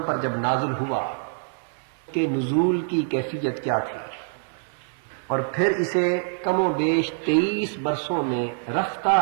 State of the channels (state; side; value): silent; left; digital silence